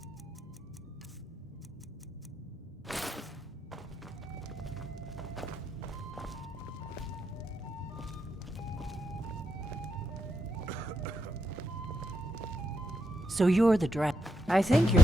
So you're the dragon. I think you're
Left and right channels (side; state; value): both; normal; correlation 0.85